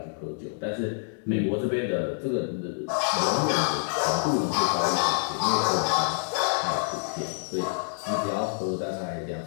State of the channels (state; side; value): silent; right; digital silence